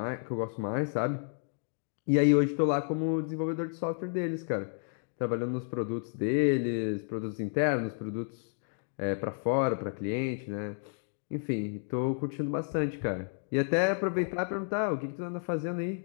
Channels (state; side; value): silent; right; 57 dB below the other